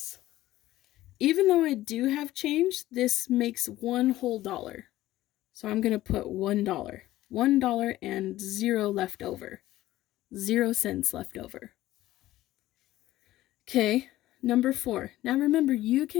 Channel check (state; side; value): quieter; right; 15.5 dB